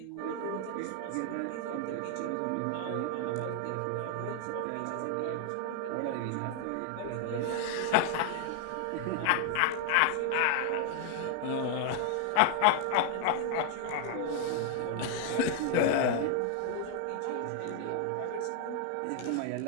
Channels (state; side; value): different; both; correlation 0.00